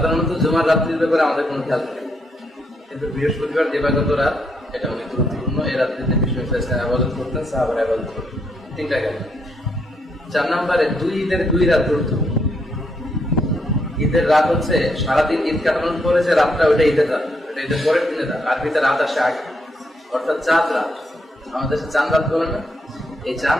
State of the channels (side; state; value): both; normal; correlation 0.76